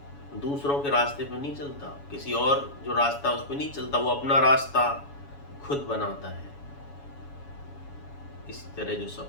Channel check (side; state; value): right; late; 7.1 ms